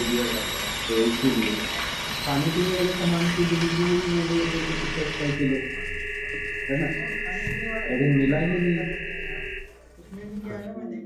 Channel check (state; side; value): identical; both; correlation 1.00